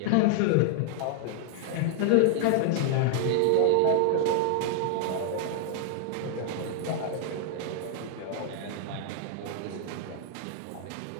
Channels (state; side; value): different; both; correlation 0.00